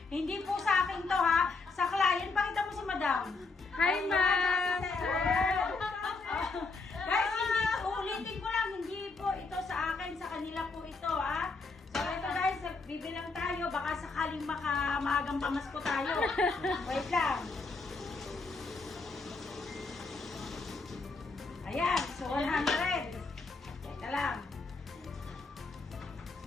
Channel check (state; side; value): quieter; right; 4.0 dB